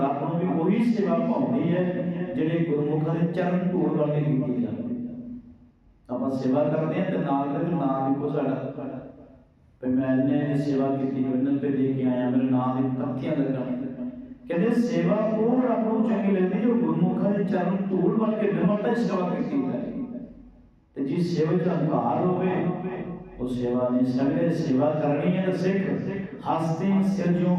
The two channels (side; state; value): both; identical; correlation 1.00